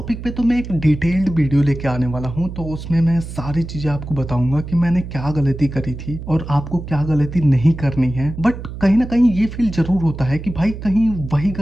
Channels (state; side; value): noise; right; hum, 10 dB below the sound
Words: पे तो मैं एक डिटेल्ड वीडियो लेके आने वाला हूँ, तो उसमें मैं सारी चीजें आपको बताऊंगा कि मैंने क्या गलती करी थी और आपको क्या गलती नहीं करनी है। बट कहीं ना कहीं ये फील जरूर होता है कि भाई कहीं वही